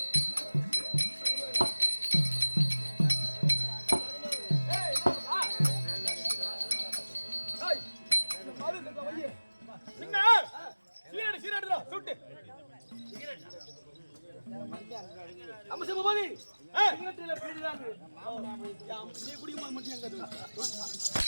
சீராடுதா சுட்டு அம்மா சிவபாதி சிகரெட்ல பீடிதாங்க நீ குடிக்கும்போது மட்டும் எங்க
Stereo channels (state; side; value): inverted; both; correlation -1.00